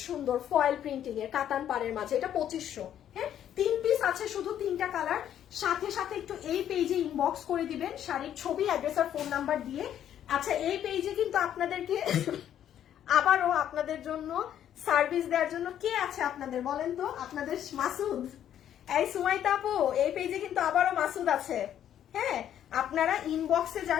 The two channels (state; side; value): quieter; right; 10.4 dB